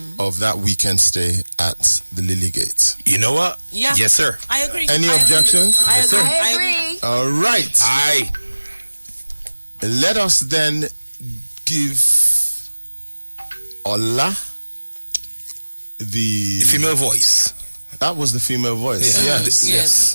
of that weekend stay at the Lily Gate. You know what? Yeah. Yes, sir. I agree. Any objections? Yes, sir. I agree. All right. Let us then give Ola the female voice. That was the female voice. Yes.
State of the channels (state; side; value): inverted; both; correlation -1.00